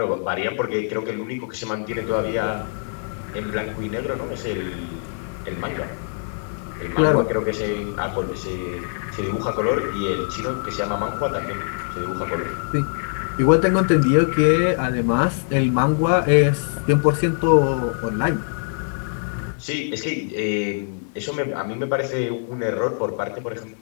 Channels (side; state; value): right; silent; digital silence